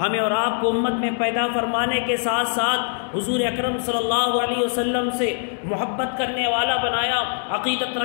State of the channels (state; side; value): silent; right; 64 dB below the other